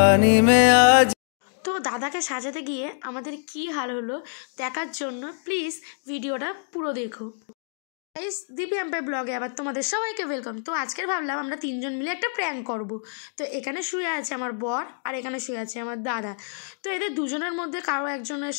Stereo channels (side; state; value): right; silent; digital silence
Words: में आज। তো দাদাকে সাজাতে গিয়ে আমাদের কি হাল হলো দেখার জন্য প্লিজ ভিডিওটা পুরো দেখো। গাইস, দীপি এম্পায়ার ব্লগে আবার তোমাদের সবাইকে ওয়েলকাম। তো আজকের ভাবলাম আমরা তিনজন মিলে একটা প্র্যাঙ্ক করব। তো এখানে শুয়ে আছে আমার বর আর এখানে শুয়ে আছে আমার দাদা। তো এদের দুজনের মধ্যে কারো একজনের